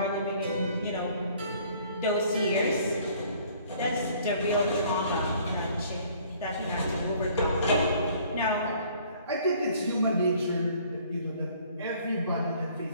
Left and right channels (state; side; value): inverted; both; correlation -0.57